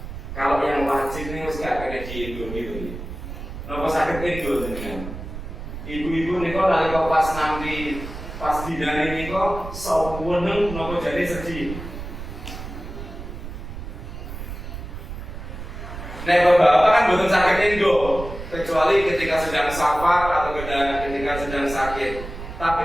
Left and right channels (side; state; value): right; noise; rumble, 9 dB below the sound